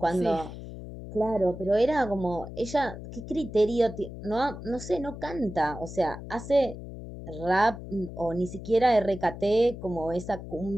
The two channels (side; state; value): left; noise; hum, 11 dB below the sound